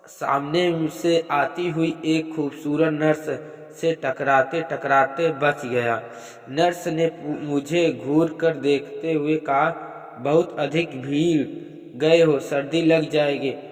सामने से आती हुई एक खूबसूरत नर्स से टकराते टकराते बच गया। नर्स ने मुझे घूर कर देखते हुए कहा, बहुत अधिक भीड़ गए हो, सर्दी लग जाएगी।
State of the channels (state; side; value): identical; both; correlation 1.00